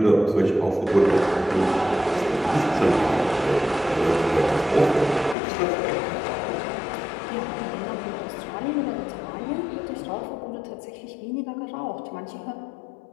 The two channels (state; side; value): drops out; right; at 5.4 s